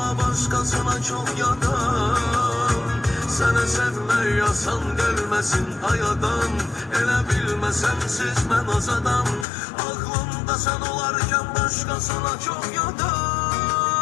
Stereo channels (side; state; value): right; drops out; at 9.5 s